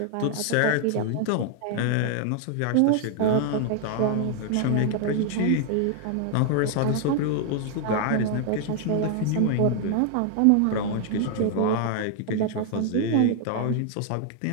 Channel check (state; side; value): different; both; correlation 0.00